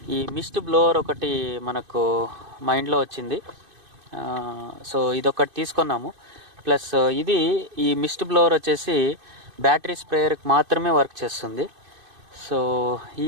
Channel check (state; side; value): late; left; 2.5 ms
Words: ఈ మిస్ట్ బ్లోవర్ ఒకటి మనకు మైండ్లో వచ్చింది. సో ఇదొకటి తీసుకున్నాము. ప్లస్ ఈ మిస్ట్ బ్లోవర్ వచ్చేసి బ్యాటరీ స్ప్రేయర్కి మాత్రమే వర్క్ చేస్తుంది. సో